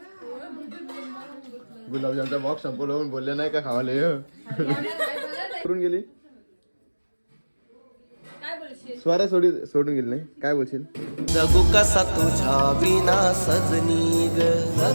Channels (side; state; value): both; inverted; correlation -1.00